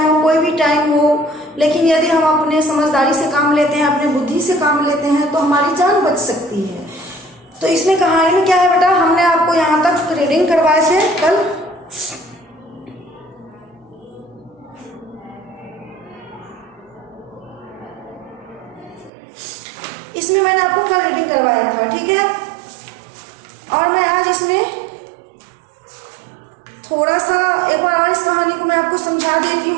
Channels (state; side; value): drops out; left; at 19.1 s